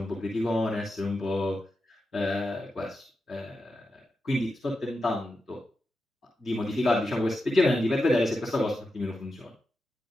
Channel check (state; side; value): normal; both; correlation 0.89